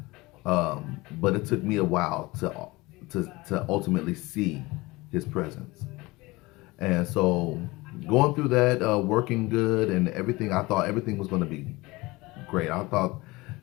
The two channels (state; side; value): quieter; right; 21.9 dB